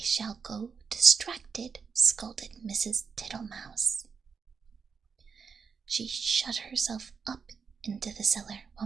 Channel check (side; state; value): left; quieter; 5.8 dB